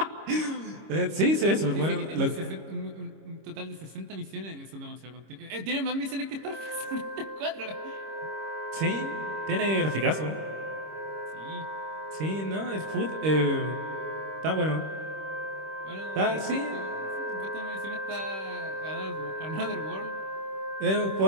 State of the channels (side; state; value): left; late; 26 ms